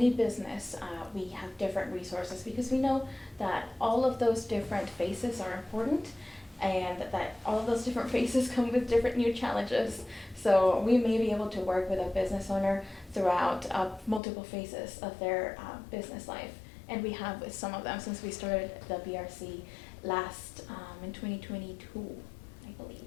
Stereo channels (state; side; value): drops out; right; at 14.2 s